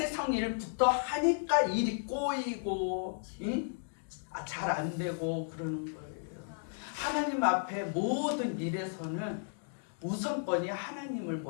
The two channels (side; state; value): right; silent; digital silence